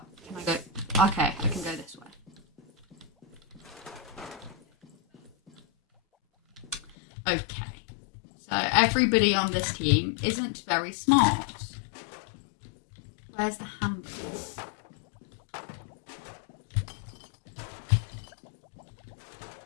can I go? Okay, I can go this way. Okay. So everybody on this team isn't very smart. Where's the hamburger?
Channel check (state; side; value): drops out; right; at 7.0 s